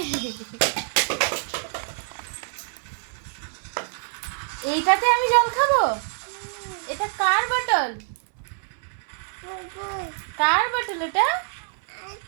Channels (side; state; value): left; silent; 60 dB below the other